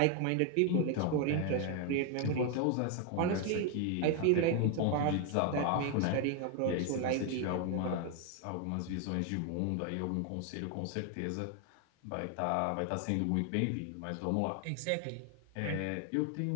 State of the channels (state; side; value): different; both; correlation 0.01